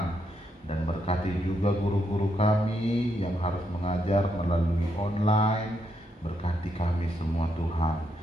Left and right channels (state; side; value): normal; both; correlation 0.78